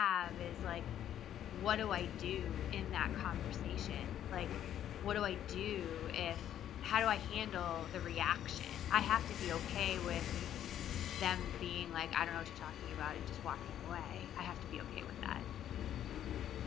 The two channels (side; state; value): right; quieter; 10.8 dB